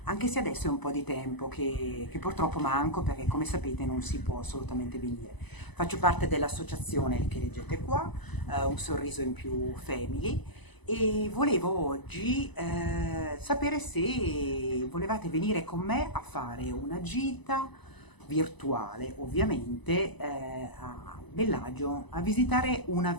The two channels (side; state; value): right; late; 1.0 ms